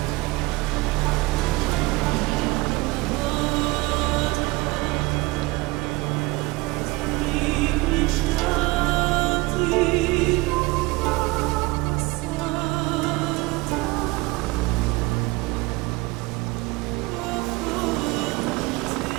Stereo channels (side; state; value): left; quieter; 22.3 dB